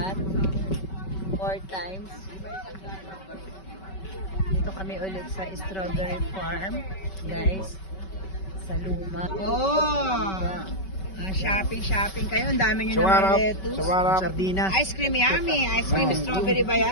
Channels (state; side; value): late; right; 5.2 ms